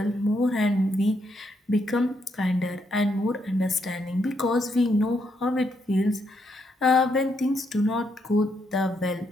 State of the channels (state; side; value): normal; both; correlation 0.77